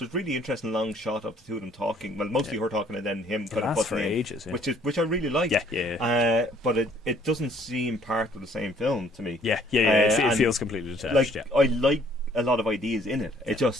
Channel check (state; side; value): normal; both; correlation 0.61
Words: really interesting long shot of the two of them talking. Well, mostly her talking and then him kind of lasts for butting in, ages, yeah. which I really like. Yeah. But it doesn't seem part of the same film to me. Yeah. It feels completely detached. Like I like a lot of ideas in it. It